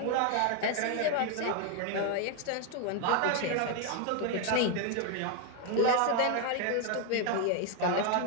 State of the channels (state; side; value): different; both; correlation 0.01